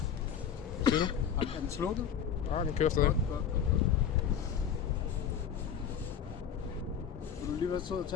Hvad siger du? Er den slukket? Ja, den kører stadig. Godt. Vil du lige være sød at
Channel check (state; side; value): quieter; right; 7.9 dB